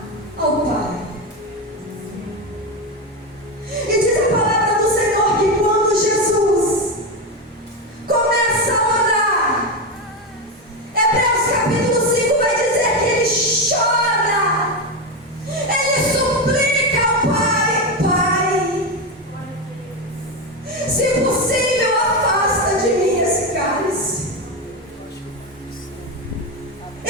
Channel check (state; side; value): normal; both; correlation 0.13